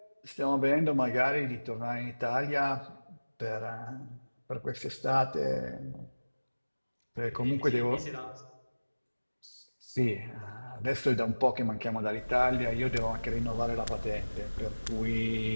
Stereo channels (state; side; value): inverted; both; correlation -1.00